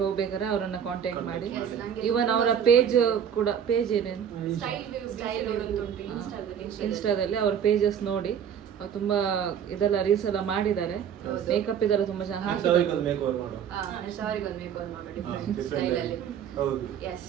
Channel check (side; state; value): left; quieter; 8.4 dB